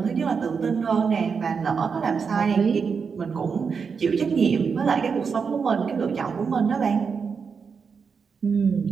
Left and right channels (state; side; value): quieter; left; 5.8 dB